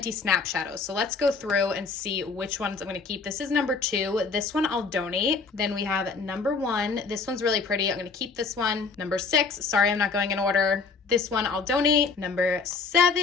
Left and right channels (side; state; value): right; quieter; 4.7 dB